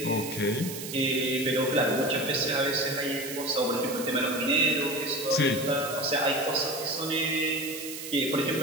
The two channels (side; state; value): right; noise; hiss, 9 dB below the sound